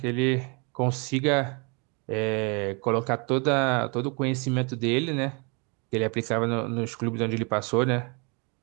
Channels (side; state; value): left; quieter; 32.9 dB